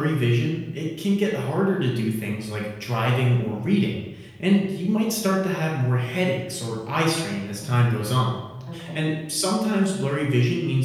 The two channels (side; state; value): both; identical; correlation 1.00